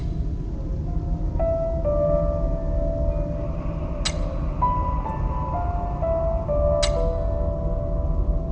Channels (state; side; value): identical; both; correlation 1.00